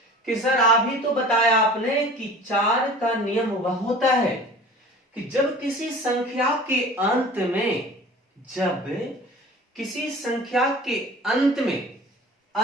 कि सर अभी तो बताया आपने कि 4 का नियम वह होता है कि जब किसी संख्या के अंत में, जब किसी संख्या के अंत में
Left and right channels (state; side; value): normal; both; correlation 0.42